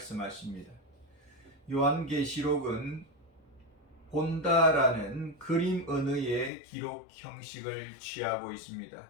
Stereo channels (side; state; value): right; drops out; at 6.5 s